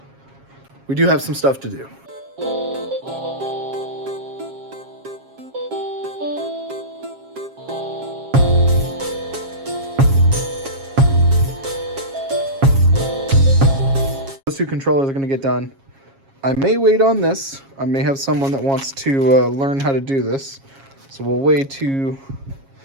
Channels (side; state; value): left; late; 7.3 ms